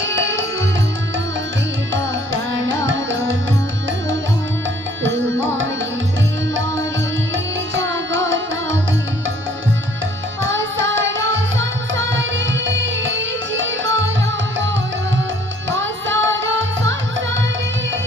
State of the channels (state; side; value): normal; both; correlation 0.60